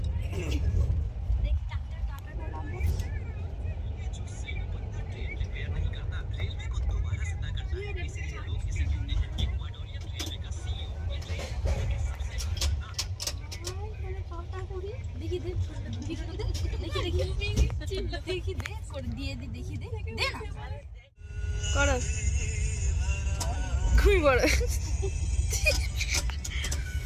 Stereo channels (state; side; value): identical; both; correlation 1.00